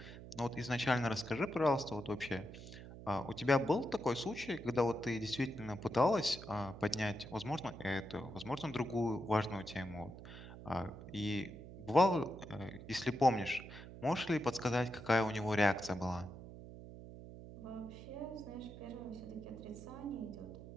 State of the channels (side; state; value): right; noise; hum, 13 dB below the sound